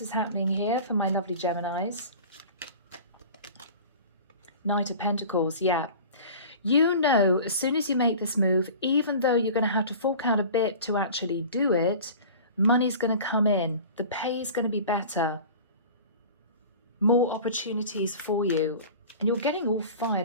is happening here for my lovely Geminis? Knight of Pentacles, yeah. You know, as soon as you make this move, even though you're going to have to fork out a bit to actually do it, money's going to come in. The pay is going to be better. More opportunities for you. And you're getting all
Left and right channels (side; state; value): both; inverted; correlation -0.39